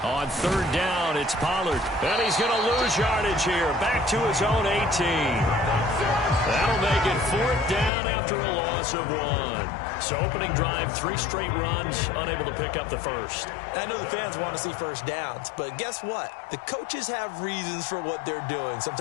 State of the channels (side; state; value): right; drops out; at 7.9 s